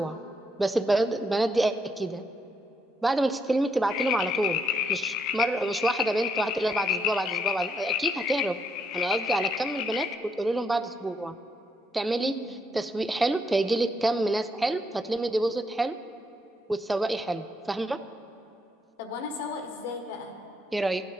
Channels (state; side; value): normal; both; correlation 0.75